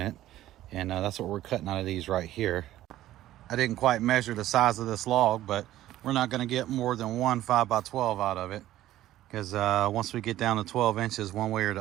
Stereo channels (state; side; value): quieter; left; 14.1 dB